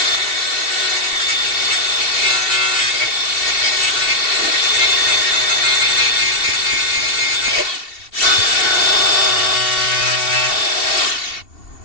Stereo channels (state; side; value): late; right; 2.7 ms